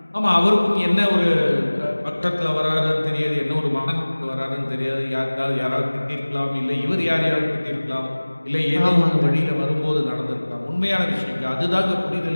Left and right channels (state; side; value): inverted; both; correlation -1.00